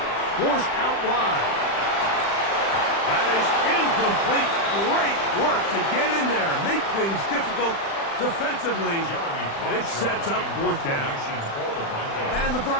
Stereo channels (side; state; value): right; late; 36 ms